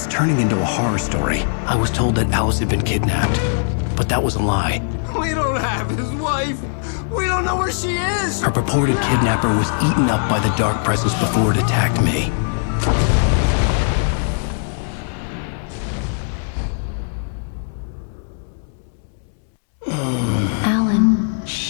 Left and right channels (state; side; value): silent; right; digital silence